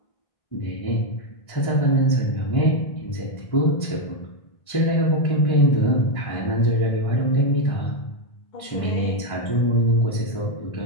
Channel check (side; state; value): right; late; 1.6 ms